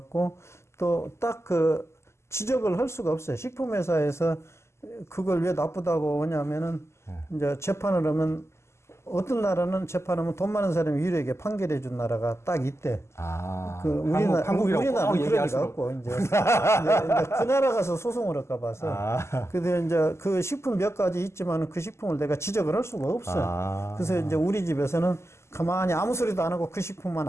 또 딱 그 지적을 할 수가 없어요. 식품회사에서 그걸 왜 나쁘다고 하냐면은 이제 재판을 하면 어떤 나라는 재판하면 돈 많은 사람이 유리하게 판결해 준 나라가 딱 있대. 그 우리나라는 그런 리가 없고 이제 그 나라 가서 소송을 할까 봐서. 근데 이제 그 식품 몇 가지 있지만 그 식품을 내가 지적을 할 수가 없어요. 그래서 이제 우리 집에서는 가만히 아무 소리도 안 하고 그 식품만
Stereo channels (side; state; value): right; late; 0.13 ms